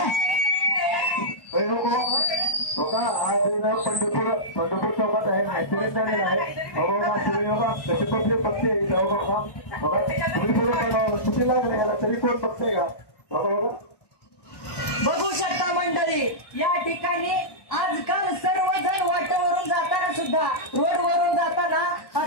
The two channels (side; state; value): right; late; 1.1 ms